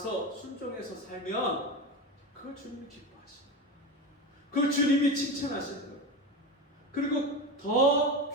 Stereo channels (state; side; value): normal; both; correlation 0.22